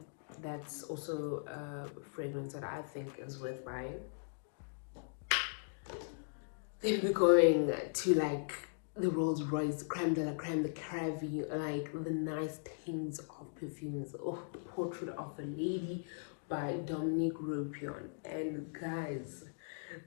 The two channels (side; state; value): right; silent; digital silence